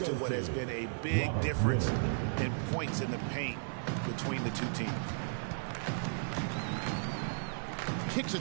to what has been a big difference in points in the paint between the two teams. Kicks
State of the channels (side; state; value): left; silent; 55 dB below the other